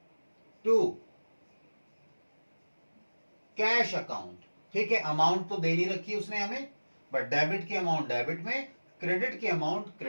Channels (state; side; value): inverted; both; correlation -1.00